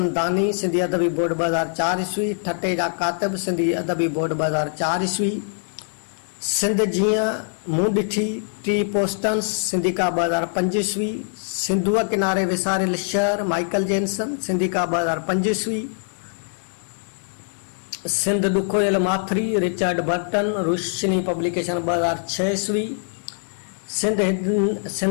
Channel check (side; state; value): right; silent; digital silence